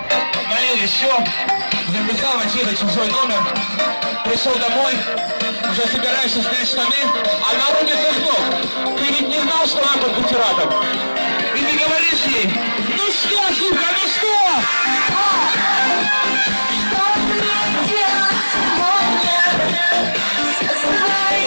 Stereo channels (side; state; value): both; inverted; correlation -1.00